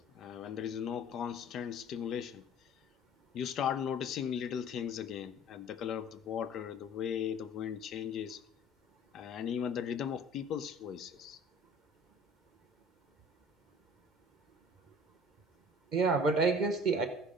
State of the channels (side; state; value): both; normal; correlation 0.47